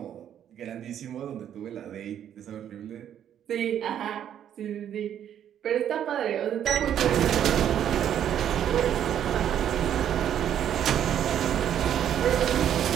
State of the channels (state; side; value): quieter; left; 9.9 dB